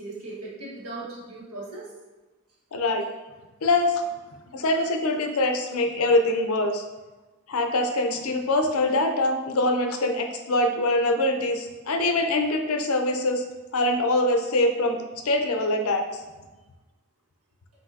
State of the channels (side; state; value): both; normal; correlation -0.20